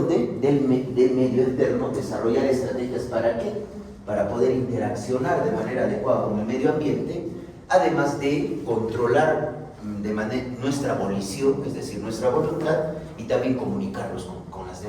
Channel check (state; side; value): identical; both; correlation 1.00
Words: Del medio externo, desarrollar estrategias ¿para qué? Para poder interaccionar de manera adecuada con el medio ambiente, además de controlar nuestra volición, es decir, nuestra voluntad, y también comunicarnos con las